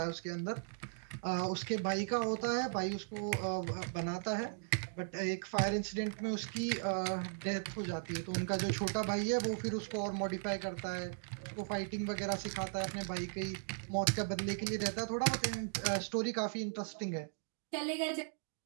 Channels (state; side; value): silent; left; digital silence